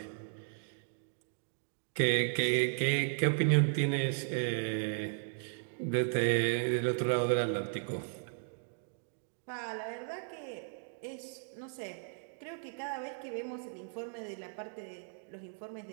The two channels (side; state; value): left; silent; digital silence